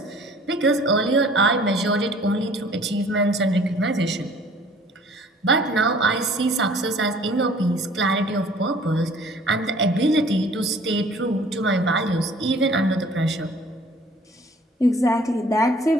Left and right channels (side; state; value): both; normal; correlation 0.52